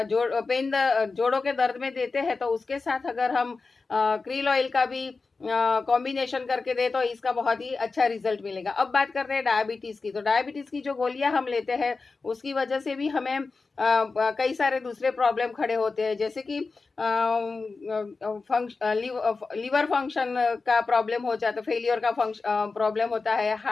जोड़ों के दर्द में देते हैं, तो उसके साथ अगर हम क्रील ऑयल का भी कॉम्बिनेशन करके दे तो इसका बहुत ही अच्छा रिजल्ट मिलेगा। अब बात करते हैं डायबिटीज की। तो डायबिटीज की जो गोलियां हम लेते हैं उसकी वजह से भी हमें कई सारे दूसरे प्रॉब्लम खड़े होते हैं, जैसे कि लीवर फंक्शन का प्रॉब्लम हो जाता है, फेलियर का प्रॉब्लम होता है,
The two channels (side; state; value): right; quieter; 4.1 dB